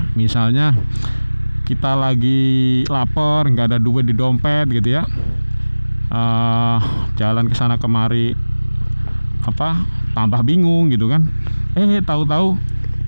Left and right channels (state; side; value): inverted; both; correlation -1.00